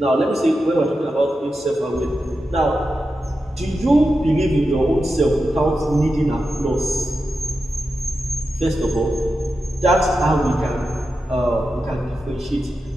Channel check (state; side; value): normal; both; correlation 0.90